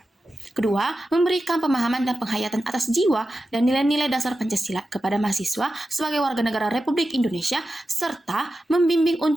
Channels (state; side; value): normal; both; correlation 0.92